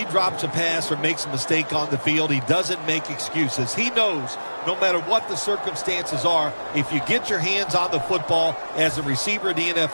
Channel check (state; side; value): inverted; both; correlation -1.00